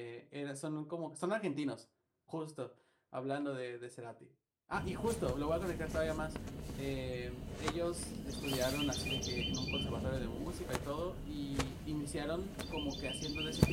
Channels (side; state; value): both; identical; correlation 1.00